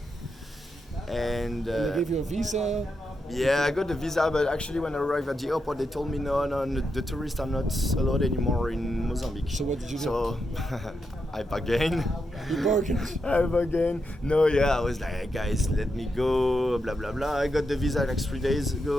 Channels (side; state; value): both; normal; correlation 0.85